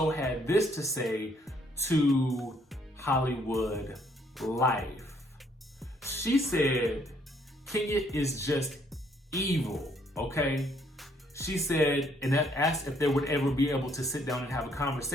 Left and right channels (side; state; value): both; normal; correlation 0.67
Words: had this to say to Hollywood Life. She said, Kenya is just evil, okay? She said, and asked if they would ever be able to sit down and have a